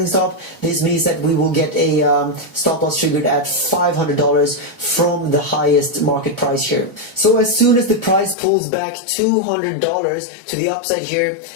stop, this means that we will get a stop loss triggered at $500 from the highest market price here. So as soon as the price pulls back $200 to the upside here,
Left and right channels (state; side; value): drops out; right; at 8.3 s